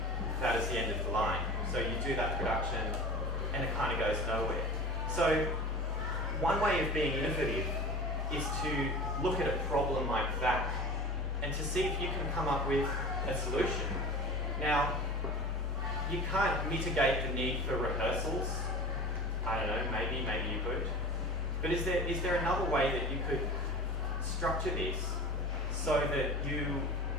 that is the end of the line. So you do that production, and it kind of goes nowhere. So one way of being innovative is to look at a problem like that, and to see if you can come up with a solution. Now, you can't mitigate the need for rehearsals. I don't know, maybe you could. But is there another way that you could structure this so that you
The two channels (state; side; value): normal; both; correlation 0.35